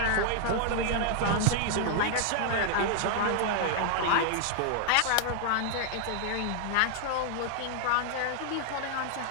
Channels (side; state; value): both; different; correlation -0.01